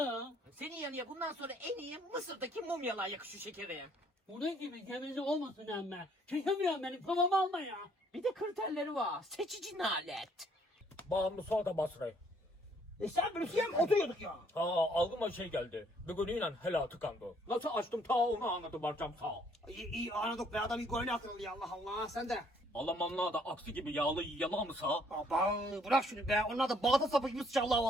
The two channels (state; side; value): normal; both; correlation 0.65